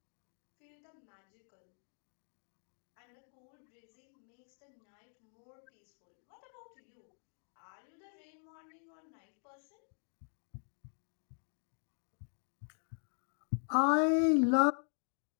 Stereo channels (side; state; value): right; silent; 50 dB below the other